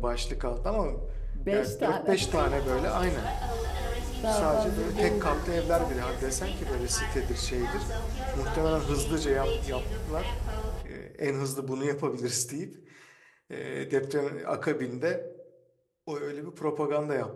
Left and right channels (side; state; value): both; identical; correlation 1.00